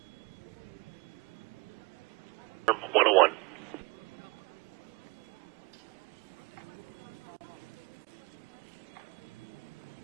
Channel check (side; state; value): left; quieter; 26.5 dB